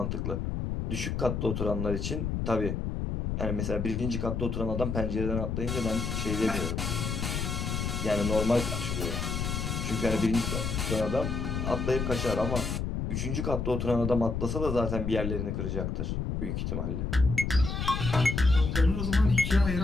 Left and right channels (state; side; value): noise; left; rumble, 2 dB below the sound